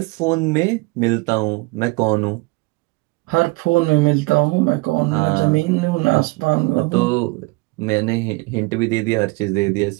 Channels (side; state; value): left; quieter; 25.4 dB